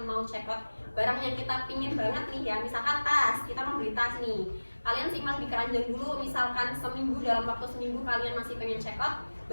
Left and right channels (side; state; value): both; inverted; correlation -1.00